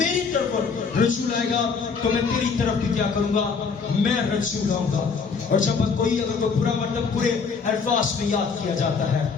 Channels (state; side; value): quieter; right; 5.3 dB